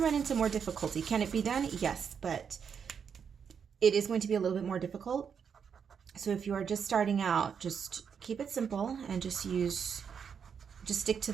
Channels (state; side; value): quieter; left; 7.0 dB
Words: into more difficulty. Can it be done? Yes, but it is going to be a little bit more difficult. So if you are just starting out, just keep it simple and just stick to